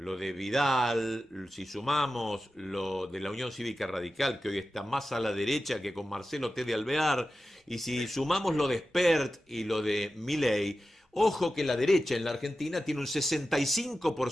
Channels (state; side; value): normal; both; correlation 0.93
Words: de Vidal, si sumamos lo de la Unión Cívica Radical, que hoy está más a la derecha que con Marcelo T. de Alvear, y si sumamos lo de Spert y lo de Milei, ojo que la derecha en la Argentina tiene un